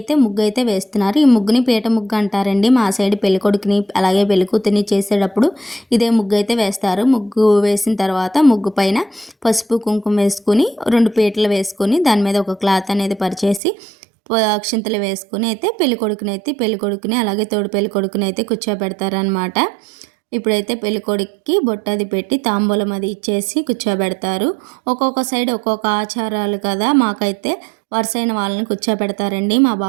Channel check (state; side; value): drops out; left; at 13.6 s